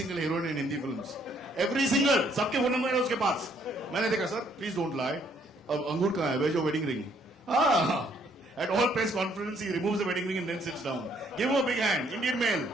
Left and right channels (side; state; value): both; normal; correlation 0.66